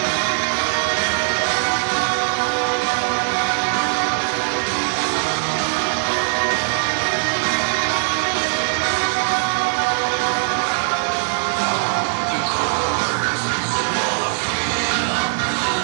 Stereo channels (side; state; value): left; silent; 65 dB below the other